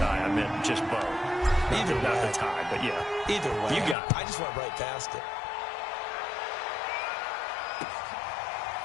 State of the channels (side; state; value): right; drops out; at 4.0 s